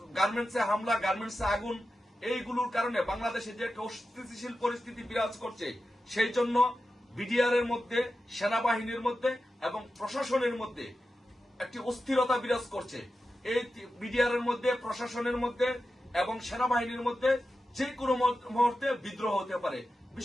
গার্মেন্টসে হামলা, গার্মেন্টসে আগুন, এইগুলোর কারণে বাংলাদেশে যে একটা অস্থিতিশীল পরিস্থিতি বিরাজ করছে, সেই জন্য বিডিআর এর মধ্যে, সেনাবাহিনীর মধ্যে এবং প্রশাসনের মধ্যে একটি অস্থিরতা বিরাজ করছে। এই বিডিআর এর মধ্যে, প্রশাসনের মধ্যে এবং সেনাবাহিনীর মধ্যে যে কোনো মুহূর্তে বিদ্রোহ হতে পারে।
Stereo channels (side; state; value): both; normal; correlation 0.92